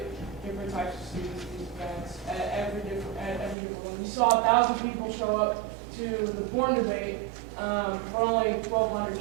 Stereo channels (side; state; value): left; drops out; at 3.6 s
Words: different types of students to these events at every different one. We saw 1,000 people show up to the porn debate, but only 1,200